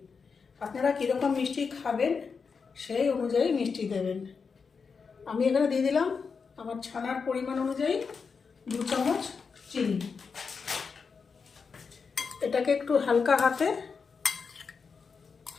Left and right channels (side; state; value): right; quieter; 5.4 dB